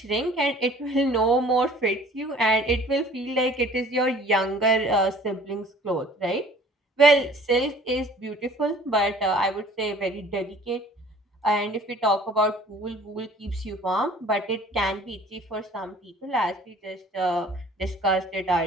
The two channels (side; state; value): both; normal; correlation 0.50